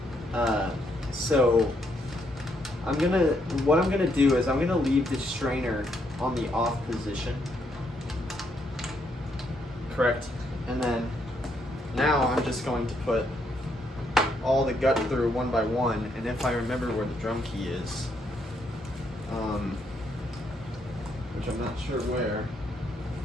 So what I'm gonna do is I'm gonna leave the strainer on the off position. Correct? And then now I'm just going to put all the gut through one by one, and if I remember where the drum key is, which I'm not sure where,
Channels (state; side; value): normal; both; correlation 0.75